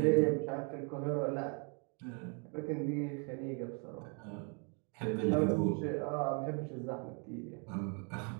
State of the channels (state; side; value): quieter; left; 37.1 dB